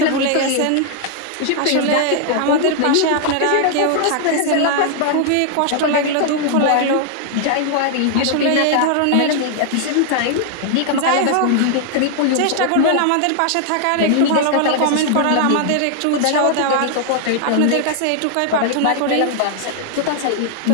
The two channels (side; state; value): both; different; correlation 0.00